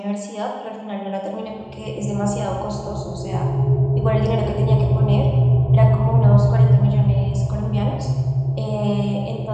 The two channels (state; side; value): identical; both; correlation 1.00